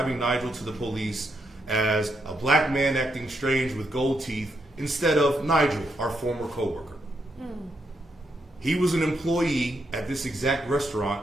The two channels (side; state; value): both; normal; correlation 0.80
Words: Nigel to the police as a black man acting strange with gold teeth instead of Nigel, our former coworker? He was an employee at this exact